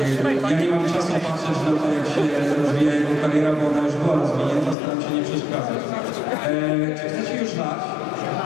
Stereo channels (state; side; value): drops out; right; at 4.8 s